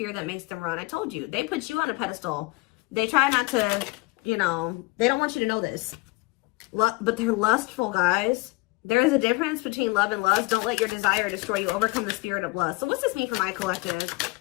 that makes them run. I told you. They put you on a pedestal. They try not to, you know, they don't want you to know this. But they're lustful, guys. There is a difference between love and lust. Don't let your desire destroy you. Overcome the spirit of lust. So what's this mean for my collective?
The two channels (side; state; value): right; quieter; 24.1 dB